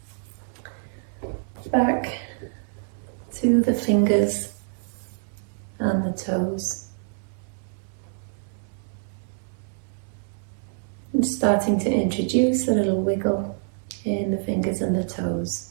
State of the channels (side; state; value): left; silent; 61 dB below the other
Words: back to the fingers and the toes. And starting to introduce a little wiggle in the fingers and the toes.